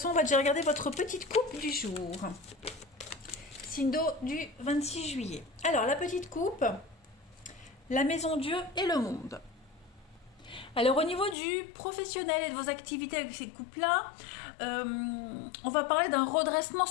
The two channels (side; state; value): right; drops out; at 11.4 s